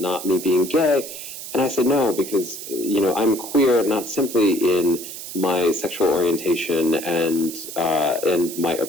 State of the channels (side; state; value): right; noise; hiss, 10 dB below the sound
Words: me being gay? And I said no, because, I'm queer not simply in my sexual orientation and my